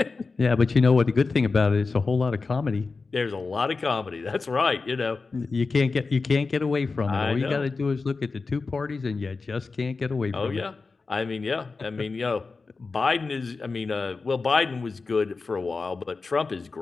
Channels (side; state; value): right; quieter; 4.2 dB